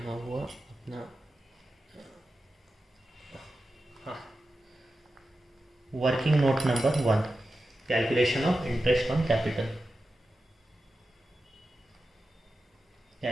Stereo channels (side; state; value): both; normal; correlation 0.92